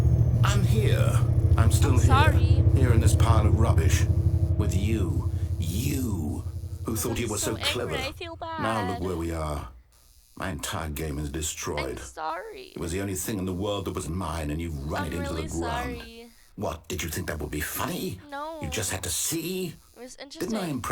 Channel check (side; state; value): both; identical; correlation 1.00